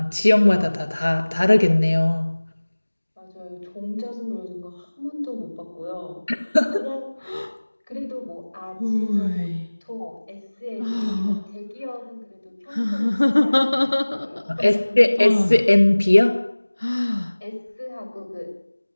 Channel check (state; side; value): inverted; both; correlation -1.00